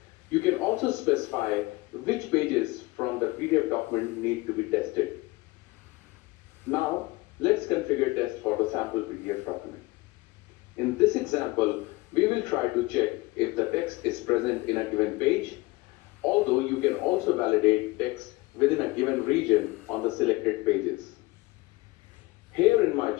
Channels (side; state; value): right; quieter; 22.1 dB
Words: You can also specify which pages from the PDF document need to be tested. Now, let's configure test for the sample PDF document. In this example, we will try to check if the text is present in a given page, although you can also validate text within a given region on the selected pages. Here in my